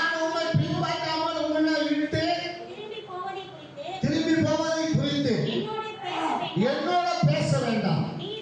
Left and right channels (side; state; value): both; identical; correlation 1.00